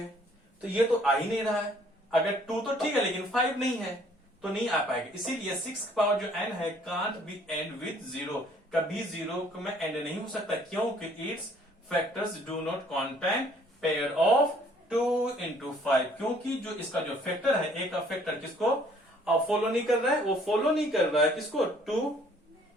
तो ये तो आ ही नहीं रहा है। अगर 2 तो ठीक है लेकिन 5 नहीं है तो नहीं आ पाएगा। इसीलिए 6 पावर जो n है कांट बी एंड विद 0, कभी 0 में एंड नहीं हो सकता, क्योंकि it's factors do not contain pair of 2 into 5, क्योंकि जो इसका जो फैक्टर है, a का फैक्टर किसको फॉलो नहीं कर रहा है, वो फॉलो नहीं कर रहा है किसको, 2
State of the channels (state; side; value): normal; both; correlation 0.60